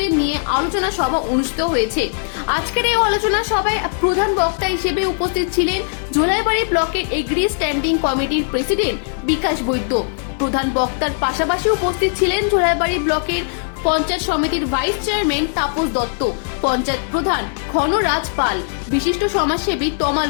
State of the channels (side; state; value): right; silent; digital silence